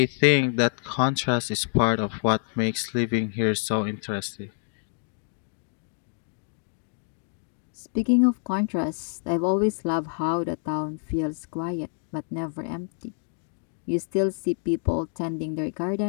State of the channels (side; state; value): right; silent; 60 dB below the other